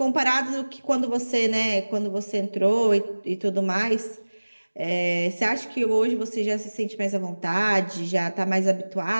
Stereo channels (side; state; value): both; inverted; correlation -1.00